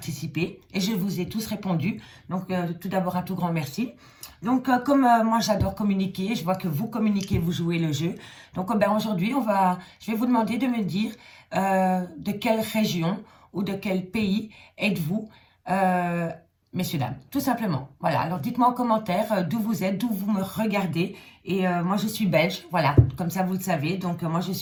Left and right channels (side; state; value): both; identical; correlation 1.00